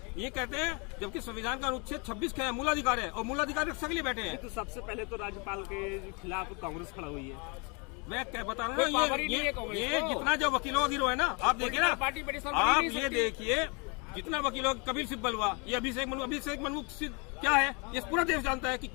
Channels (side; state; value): right; quieter; 32.3 dB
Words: ये कहते हैं जबकि संविधान का अनुच्छेद 26 का है मूलाधिकार है, और मूलाधिकार रक्षा के लिए बैठे हैं। तो सबसे पहले तो राज्यपाल के खिलाफ कांग्रेस खड़ा हुई है। मैं क्या बता रहा हूँ, ये जितना जो वकीलों का गिरोह है ना, आप देखिए ना, आप ये देखिए जितना वकीलों कपिल सिब्बल हुआ, ये अभिषेक मनु क्या है, ये पूरा देश जानता है कि